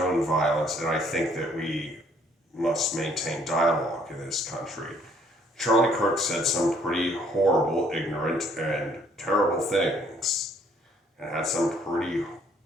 violence, and I think that we must maintain dialogue in this country. Charlie Kirk said some pretty horrible, ignorant, and terrible things, and had some pretty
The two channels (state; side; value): normal; both; correlation 0.63